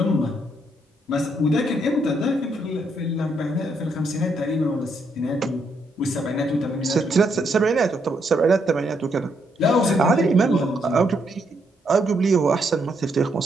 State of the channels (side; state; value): both; normal; correlation 0.75